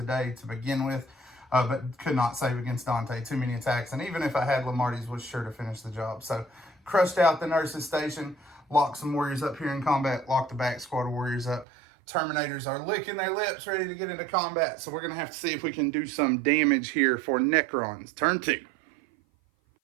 day to begin with, but could not save against Dante. Too many attacks. And even if I had Lamarty's, was sure to finish the job. So, crushed out the nurse's station, locked some Warriors up here in combat, locked the back squad of Warriors up. Terminators are licking their lips, ready to get into combat. So we're going to have to see if we can do some damage here for Necrons. Turn 2.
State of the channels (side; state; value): left; drops out; at 11.7 s